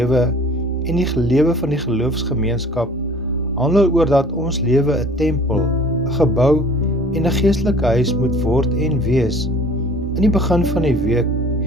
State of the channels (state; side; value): normal; both; correlation 0.49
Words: en die lewe van die geloofsgemeenskap handel oor dat ons lewe 'n tempel, 'n gebou en 'n geestelike huis moet word en wees. In die begin van die week